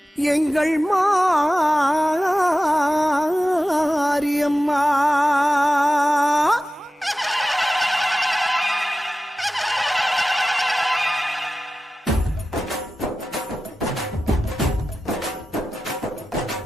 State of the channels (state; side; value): normal; both; correlation 0.94